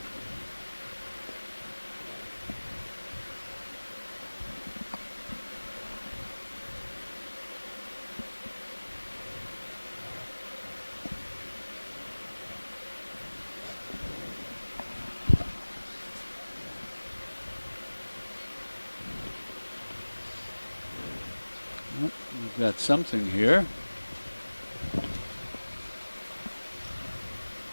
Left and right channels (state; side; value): inverted; both; correlation -1.00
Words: We've got something here.